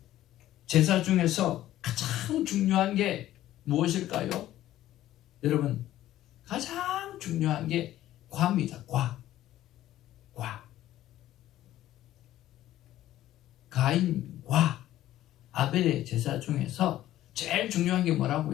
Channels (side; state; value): right; quieter; 13.8 dB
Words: 제사 중에서 가장 중요한 게 무엇일까요? 여러분, 가장 중요한 게 과입니다. 과. 가인과 아벨의 제사 중에서 제일 중요한 게